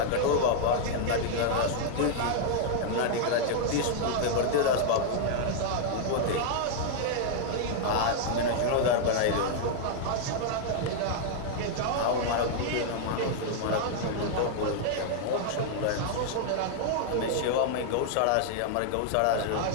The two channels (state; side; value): different; both; correlation -0.01